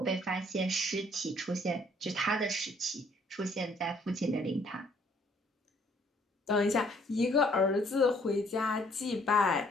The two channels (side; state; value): both; normal; correlation 0.63